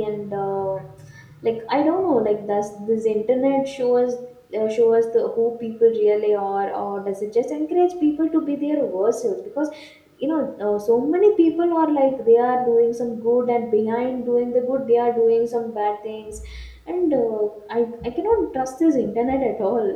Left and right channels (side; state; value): both; identical; correlation 1.00